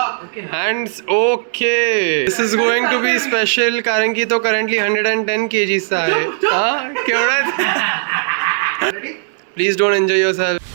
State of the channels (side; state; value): left; silent; digital silence